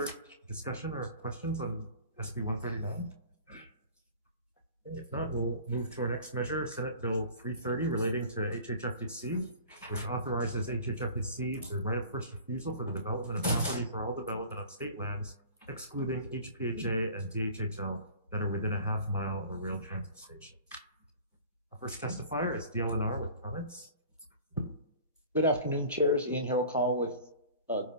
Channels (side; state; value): both; inverted; correlation -0.44